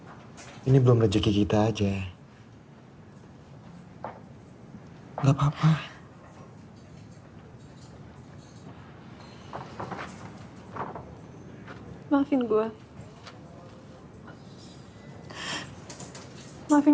Ini belum rezeki kita aja. Gak apa-apa. Maafin gue.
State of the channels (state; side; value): identical; both; correlation 1.00